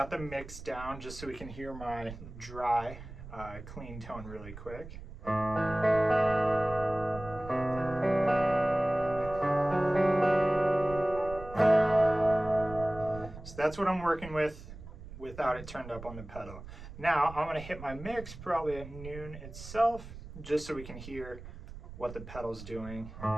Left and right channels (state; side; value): noise; right; rumble, 14 dB below the sound